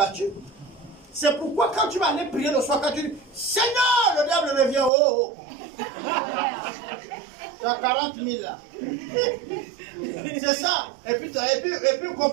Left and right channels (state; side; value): drops out; left; at 4.9 s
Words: C'est pourquoi quand tu vas aller prier le soir, quand tu dis, Seigneur, le diable revient, oh, oh. Tu as 40 000 là. C'est ça. Et puis